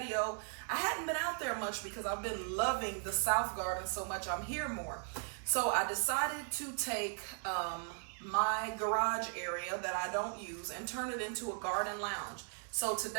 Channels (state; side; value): silent; left; 53 dB below the other